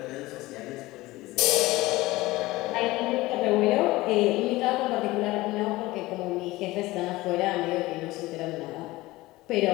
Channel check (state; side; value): quieter; right; 19.3 dB